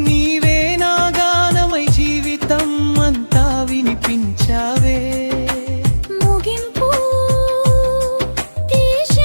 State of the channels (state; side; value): inverted; both; correlation -1.00